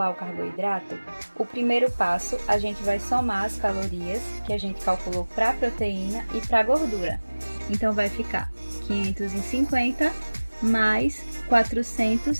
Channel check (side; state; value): both; inverted; correlation -1.00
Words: o carboidrato, o primeiro passo, a gente vai somar as calorias que a gente calculou para a proteína e para a gordura. Então, vai ficar 550 mais